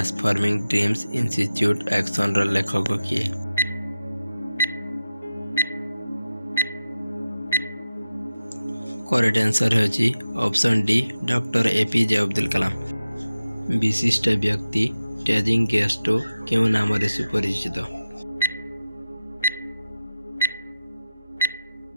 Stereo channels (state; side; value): inverted; both; correlation -0.91